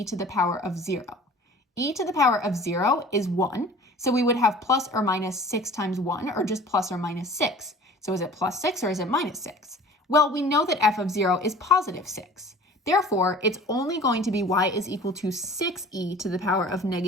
to the power of 0. E to the power of 0 is 1, so we would have plus or minus 6 times 1, or just plus or minus 6. So is it plus 6 or is it minus 6? Well, we know that f of 0 is positive 6. Therefore, it's only going to be y is equal to 6e to the power of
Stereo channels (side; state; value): both; normal; correlation 0.45